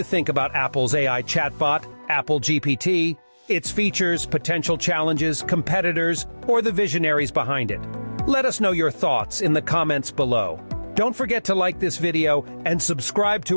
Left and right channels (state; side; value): inverted; both; correlation -1.00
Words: think about Apple's AI chatbot, Apple GPT, its features, potential challenges, competitors, or the visionaries behind it? Let us know your thoughts in the comments below. Don't forget to like this video and subscribe